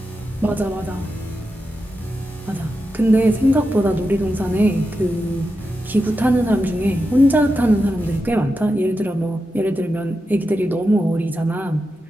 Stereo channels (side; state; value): both; normal; correlation 0.89